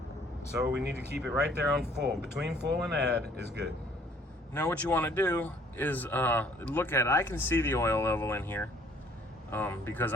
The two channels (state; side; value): normal; both; correlation 0.59